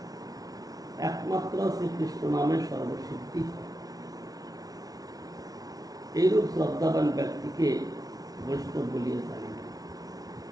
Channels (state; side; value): late; left; 0.18 ms